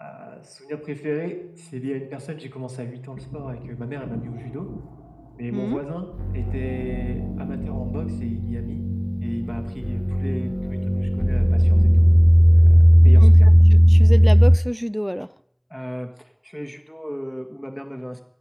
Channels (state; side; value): identical; both; correlation 1.00